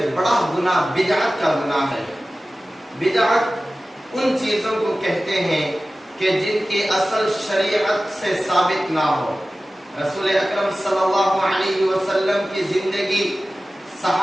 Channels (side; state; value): both; normal; correlation 0.96